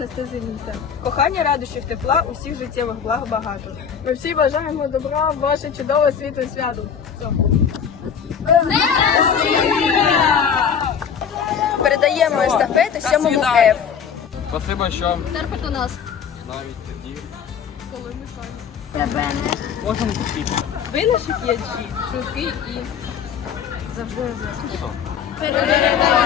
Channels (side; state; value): right; quieter; 7.4 dB